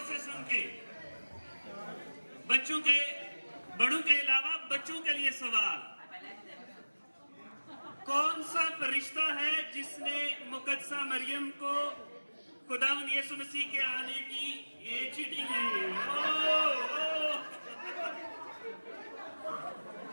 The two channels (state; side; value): inverted; both; correlation -1.00